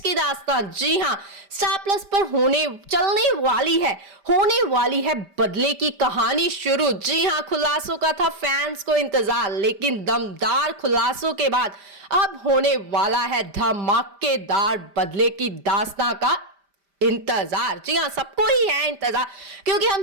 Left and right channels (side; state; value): left; late; 5.1 ms